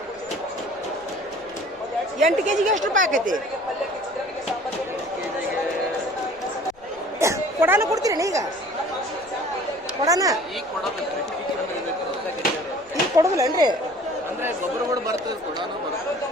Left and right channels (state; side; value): noise; left; rumble, 29 dB below the sound